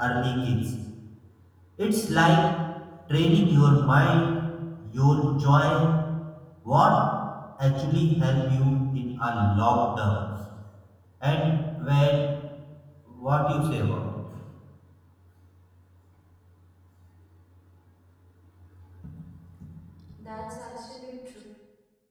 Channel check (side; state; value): both; identical; correlation 1.00